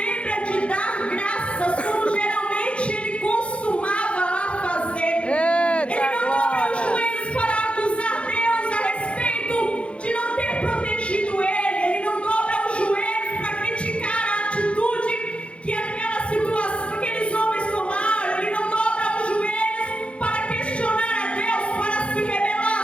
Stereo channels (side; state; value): right; late; 0.060 ms